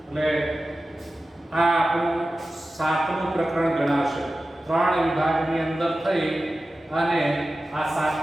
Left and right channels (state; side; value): normal; both; correlation 0.94